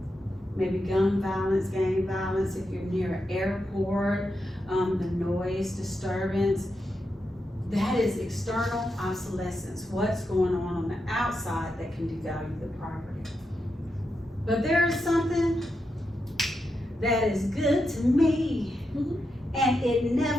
Maybe gun violence, gang violence, if you're near an airport, the noise disturbance. That is external obsolescence. What's going on the outside that can devalue the property. But there is something that is good to me, and it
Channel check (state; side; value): normal; both; correlation 0.86